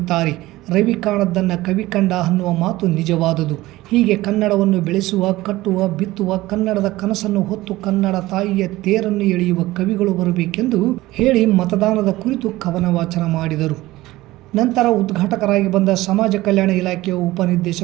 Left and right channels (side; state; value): left; quieter; 17.8 dB